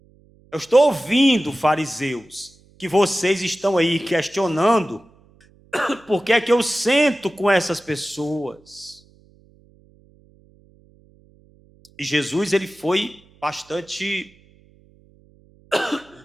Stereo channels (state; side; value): noise; right; hum, 30 dB below the sound